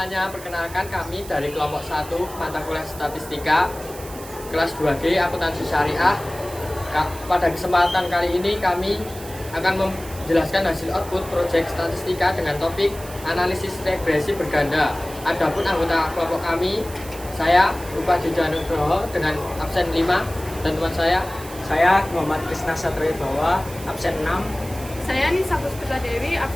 perkenalkan kami dari kelompok 1 mata kuliah statistika kelas 2G akuntansi syariah. Pada kesempatan kali ini kami akan menjelaskan hasil output proyek statistika dengan topik analisis regresi berganda. Adapun anggota kelompok kami, saya Rupa Jujanugroho dengan absen 5 dan teman Saya Muhammad Krisna Satrio Bawa, absen 6. Saya Nisa Puspita Dewi,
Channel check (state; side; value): noise; right; hiss, 16 dB below the sound